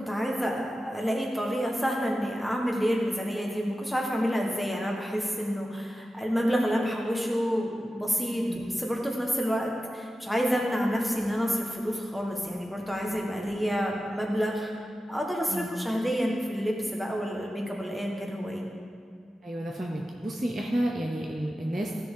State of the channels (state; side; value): normal; both; correlation 0.93